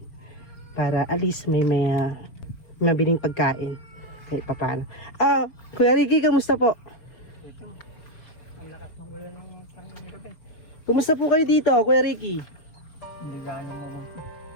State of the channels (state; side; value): late; right; 4.6 ms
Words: Para at least may mabiling pagkain kahit papaano. Kuya Ricky, kamusta po? Kumusta po kayo dito, Kuya Ricky? Hindi gano'n mo.